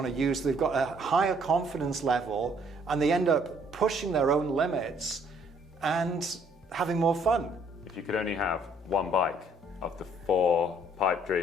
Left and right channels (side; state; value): both; normal; correlation 0.63